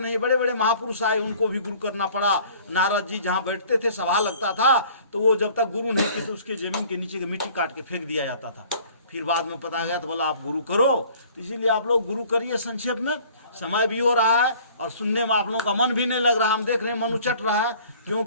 बड़े बड़े महापुरुष आए, उनको भी गुरु करना पड़ा। नारद जी जहाँ बैठते थे, सभा लगता था, तो वो जब तक गुरु नहीं की तो उसके जमीन के नीचे की मिट्टी काट के फेंक दिया जाता था। फिर बाद में पता गया तो बोला आप गुरु करो। इसीलिए आप लोग गुरु करिए। संक्षेप में समय भी हो रहा है और सुनने में आप लोगों का मन भी नहीं लग रहा। हम देख रहे हैं मन उचट रहा है,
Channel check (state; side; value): inverted; both; correlation -0.52